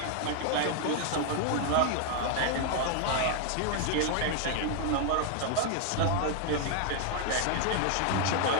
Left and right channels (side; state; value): both; different; correlation 0.00